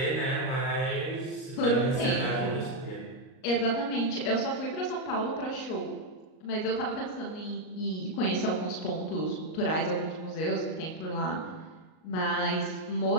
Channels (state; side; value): late; right; 38 ms